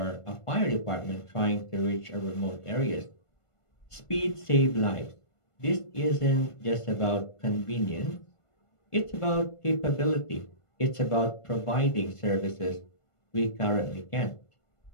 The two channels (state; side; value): late; right; 1.5 ms